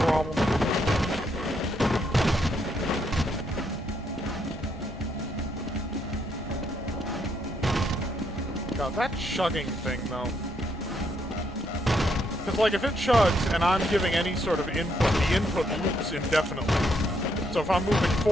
problem. God, that chugging thing, though. Because, like, if it chugs and I'm giving any sort of input, the input loops indefinitely. So if I'm moving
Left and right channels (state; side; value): normal; both; correlation 0.74